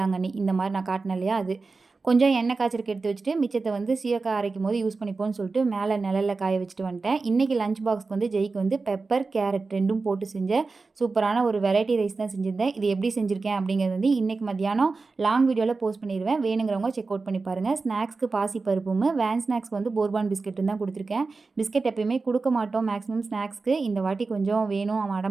இந்த மாரி நான் காட்டுனேன் இல்லையா? அது. கொஞ்சம் எண்ணெய் காய்ச்சறக்கு எடுத்து வச்சுட்டு, மிச்சத்த வந்து சீயக்காய் அரைக்கும்போது யூஸ் பண்ணிப்போம்ன்னு சொல்லிட்டு, மேல நிழல்ல காய வச்சுட்டு வந்துட்டேன். இன்னைக்கு லஞ்ச் பாக்ஸ்க்கு வந்து ஜெய்க்கு வந்து பெப்பர், கேரட் 2ம் போட்டு செஞ்ச சூப்பரான ஒரு வெரைட்டி ரைஸ் தான் செஞ்சிருந்தேன். இது எப்படி செஞ்சிருக்கேன் அப்படிங்கிறது வந்து இன்னைக்கு மத்தியானம் லாங் வீடியோல போஸ்ட் பண்ணிருவேன். வேணுங்கிறவங்க செக் அவுட் பண்ணி பாருங்க. ஸ்நாக்ஸ்க்கு பாசி பருப்பும், வேன் ஸ்நாக்ஸ்க்கு வந்து போர்பான் பிஸ்கட்டும் தான் குடுத்துருக்கேன். பிஸ்கட் எப்பயுமே குடுக்க மாட்டோம் மேக்ஸிமம் ஸ்நாக்ஸ்க்கு. இந்த வாட்டி கொஞ்சம் வேணும் அவன்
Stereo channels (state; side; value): quieter; left; 4.0 dB